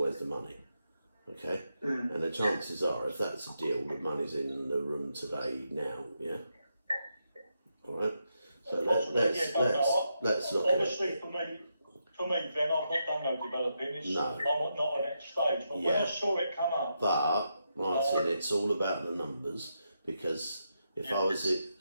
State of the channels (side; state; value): both; inverted; correlation -0.83